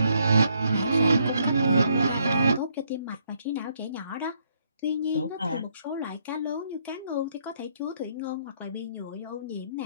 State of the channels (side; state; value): both; inverted; correlation -0.71